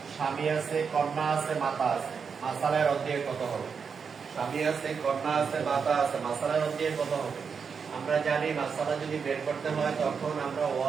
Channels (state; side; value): quieter; left; 6.0 dB